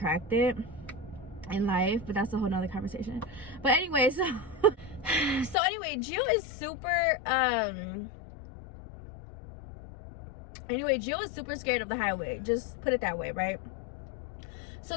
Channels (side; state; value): right; drops out; at 5.6 s